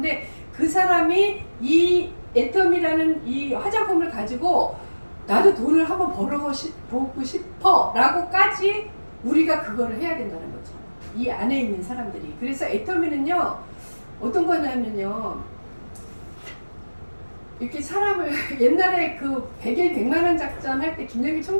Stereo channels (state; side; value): inverted; both; correlation -1.00